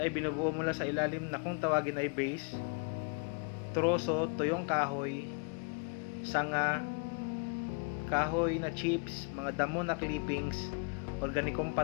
ay binubuo mula sa ilalim na kung tawagin ay base, troso, tuyong kahoy, sanga, kahoy na chips, mga damo na clippings, organikong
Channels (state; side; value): quieter; right; 35.5 dB